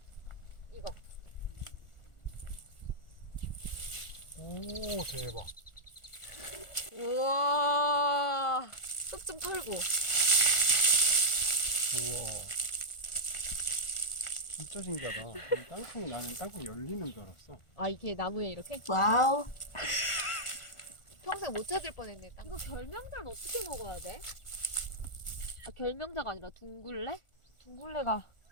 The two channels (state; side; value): late; right; 1.4 ms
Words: 이거. 오 대박. 우와. 쑥 좀 털고. 우와. 진짜 신기하다. 이 땅콩이 나는 땅콩 열리는 줄 알았어. 아 이게 나무에 이렇게? 와우. 평생 못 찾을 뻔했네. 이거 결명자는 어떻게 먹어야 돼? 아 결명자가 아니라 둥글레? 둥글레가